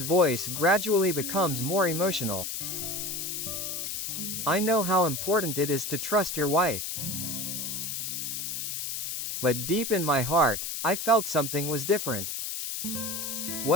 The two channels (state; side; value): noise; left; hiss, 4 dB below the sound